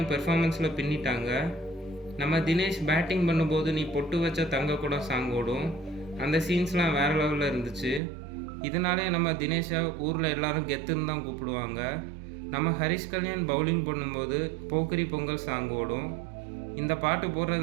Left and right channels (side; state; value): left; drops out; at 8.0 s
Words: பெர்ஃபார்மன்ஸில் பின்னிட்டாங்க. நம்ம தினேஷ் பேட்டிங் பண்ணும்போது நீ பொட்டு வச்ச தங்க கூட சாங் ஓடும். அந்த சீன்ஸ்லாம் வேறு லெவலில் இருந்துச்சு. இதனாலே நம்ம தினேஷை ஊரில் எல்லாரும் கெத்துன்னு தான் கூப்பிடுவாங்க. நம்ம ஹரிஷ் கல்யாண் பவுலிங் பண்ணும்போது போக்கிரி பொங்கல் சாங் ஓடும். இந்த பாட்டு